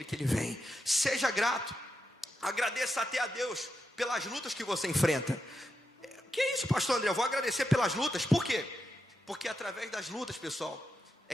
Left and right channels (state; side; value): normal; both; correlation 0.86